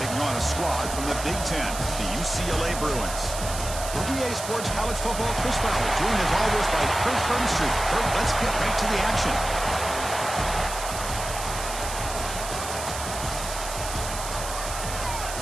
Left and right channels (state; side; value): noise; right; hiss, 8 dB below the sound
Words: on a squad from the Big Ten, the UCLA Bruins. For EA Sports College Football, Chris Fowler, joined as always by Kurt Burnstreet. Kurt, let's get right to the action.